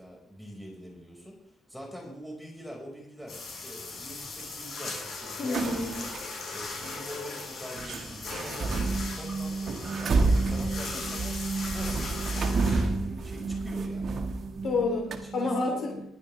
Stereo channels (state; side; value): normal; both; correlation 0.82